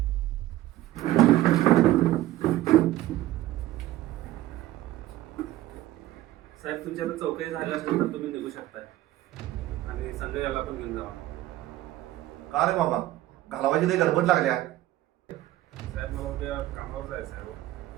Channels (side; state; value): left; quieter; 15.3 dB